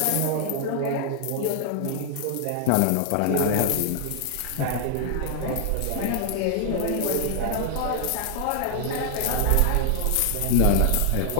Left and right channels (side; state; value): both; different; correlation 0.00